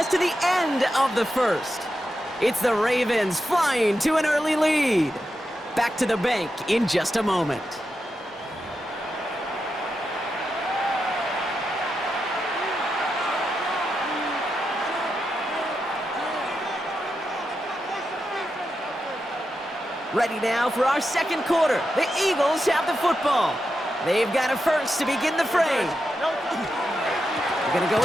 to the end of the 1st. It's the Ravens flying to an early lead. Back to the bank in just a moment. Ready now for our second quarter. The Eagles have the football. They've got a first to begin the fray. They're going to go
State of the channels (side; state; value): both; normal; correlation 0.87